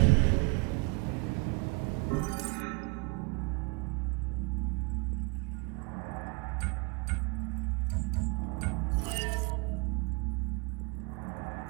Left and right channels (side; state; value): left; quieter; 28.3 dB